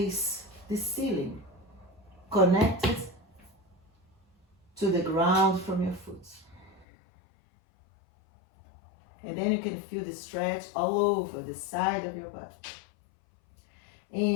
the ceiling, connected to the ground from your foot. And then you can feel the stretch all over the side of your body.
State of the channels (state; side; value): drops out; right; at 6.9 s